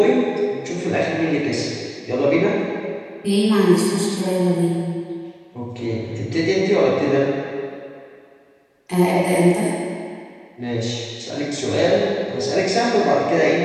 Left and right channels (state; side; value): identical; both; correlation 1.00